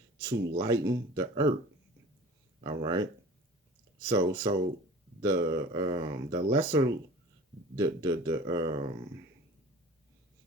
to lighten the earth. All right. So the lesser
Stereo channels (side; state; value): both; normal; correlation 0.42